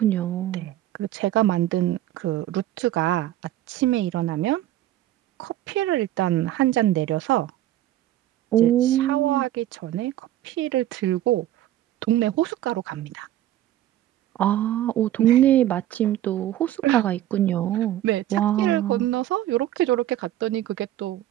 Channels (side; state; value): left; quieter; 13.3 dB